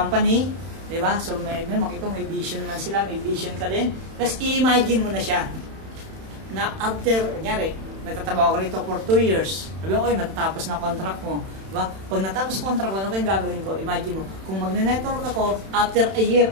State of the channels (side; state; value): left; late; 31 ms